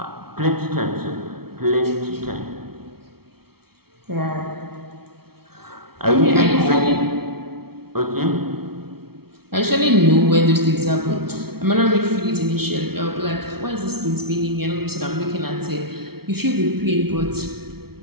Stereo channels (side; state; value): left; late; 0.95 ms